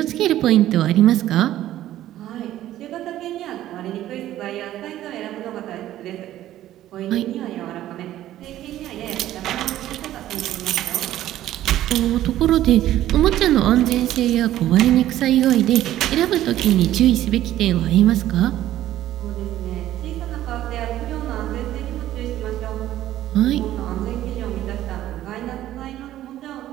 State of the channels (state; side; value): quieter; left; 13.4 dB